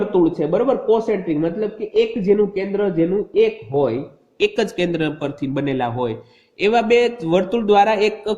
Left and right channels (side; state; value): both; identical; correlation 1.00